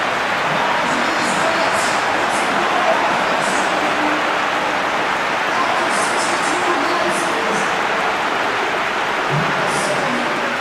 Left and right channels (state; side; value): identical; both; correlation 1.00